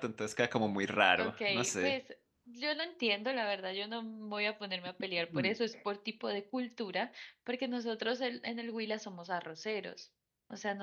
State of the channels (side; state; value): both; identical; correlation 1.00